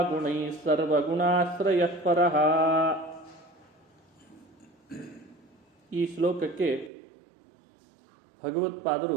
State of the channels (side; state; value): left; drops out; at 6.9 s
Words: ಗುಣೈಃ ಸರ್ವಗುಣಾಶ್ರಯಃ ಪರಃ. ಈ ಶ್ಲೋಕಕ್ಕೆ